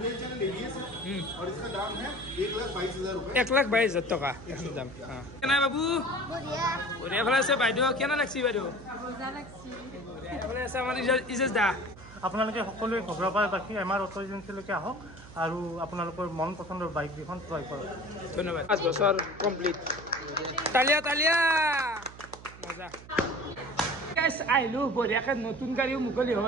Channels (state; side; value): noise; right; hum, 18 dB below the sound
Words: चैनल एबीएस है और इसका दाम है 1,22,000 रुपए 1,22,000 টকা এখন দাম কেনা বাবু বঢ়িয়া ভালে আছে বাইদেউ কেনা লাগছি বাইদেউ ভালে আছে আমাৰ ইজেজ দা আপোনালোকে সকলোৱে ঘগ্ৰাপাৰ বাকী আমাৰ অটো এজেঞ্চিলৈকে আহক আৰু আপোনালোকৰ মন পচন্দৰ বাইক দুখন ক্ৰয় কৰক ধন্যবাদ 5 বছৰ কমপ্লিট তালিয়া তালিয়া মজা গাইস আইলো বঢ়িয়াকে নতুন গাড়ীও মুকলি